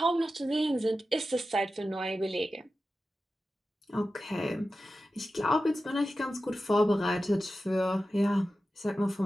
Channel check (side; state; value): both; normal; correlation 0.93